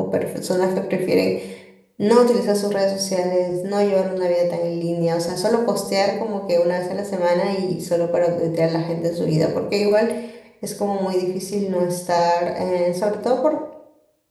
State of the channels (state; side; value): identical; both; correlation 1.00